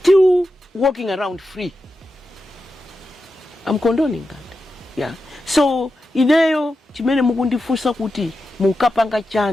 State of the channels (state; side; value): normal; both; correlation 0.90